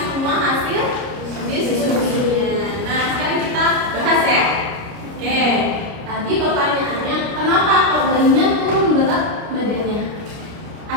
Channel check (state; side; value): late; left; 29 ms